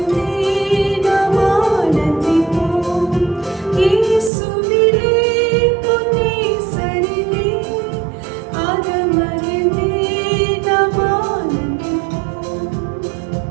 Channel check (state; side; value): drops out; left; at 4.3 s